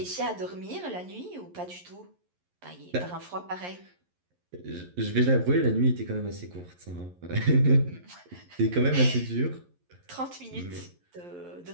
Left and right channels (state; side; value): late; left; 11 ms